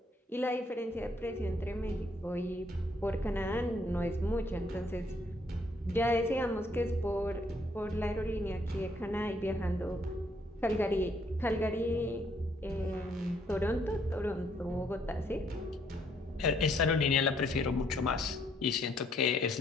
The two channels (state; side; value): normal; both; correlation 0.69